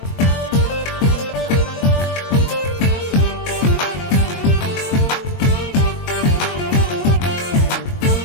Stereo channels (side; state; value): right; late; 22 ms